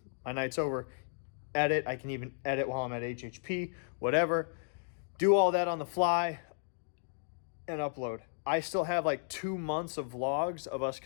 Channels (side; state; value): right; silent; digital silence